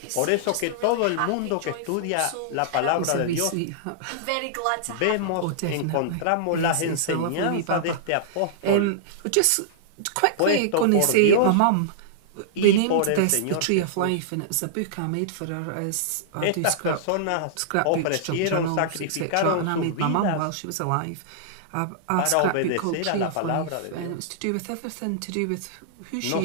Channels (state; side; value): different; both; correlation -0.02